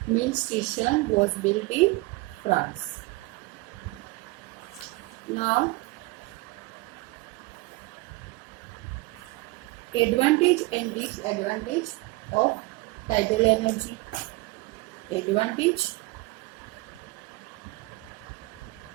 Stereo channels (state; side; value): quieter; left; 22.5 dB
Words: mill station was built in France. Now, advantage and disadvantage of tidal energy. Advantage